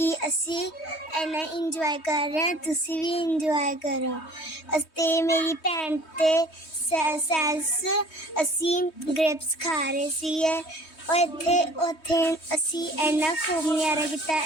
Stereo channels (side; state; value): right; late; 3.2 ms